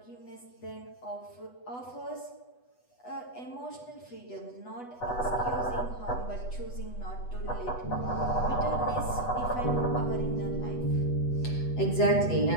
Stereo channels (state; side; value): late; right; 8.1 ms